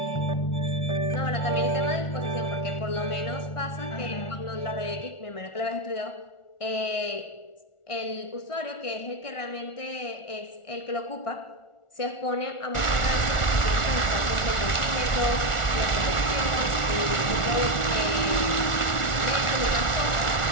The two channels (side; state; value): right; late; 1.4 ms